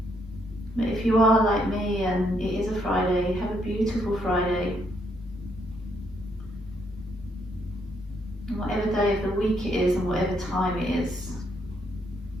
But if you are like me and it is a Friday, have a beautiful Friday. And whatever day of the week it is and whatever time it is,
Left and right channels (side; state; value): both; normal; correlation 0.74